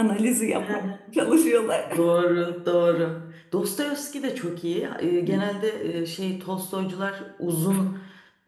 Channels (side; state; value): both; identical; correlation 1.00